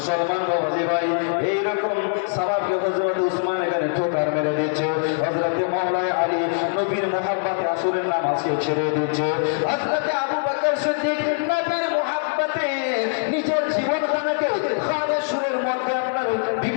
বাবাজি ভাই, এইরকম সাহাবাকে হযরত উসমান এখানে ঠোকার মেরে দিচ্ছে। হযরত মাওলানা আলী নবীর মুহাব্বতে আসরের নামাজকে ছেড়ে দিচ্ছে। হযরত আবু বকর সিদ্দিক নবীর মুহাব্বতে নিজের জীবনখানাকে খালেসুরের মধ্যে আপনার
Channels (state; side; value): silent; right; 64 dB below the other